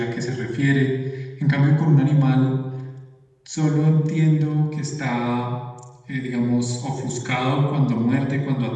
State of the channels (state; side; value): identical; both; correlation 1.00